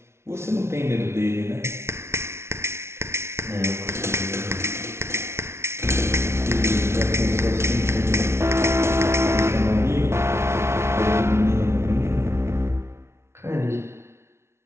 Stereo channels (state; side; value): late; left; 0.13 ms